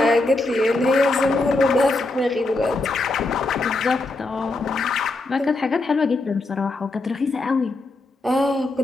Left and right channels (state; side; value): quieter; right; 3.1 dB